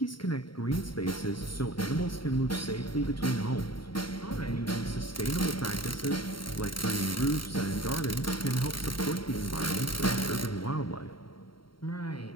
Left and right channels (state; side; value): late; right; 0.73 ms